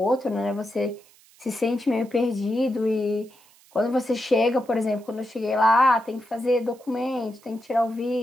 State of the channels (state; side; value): noise; right; hiss, 28 dB below the sound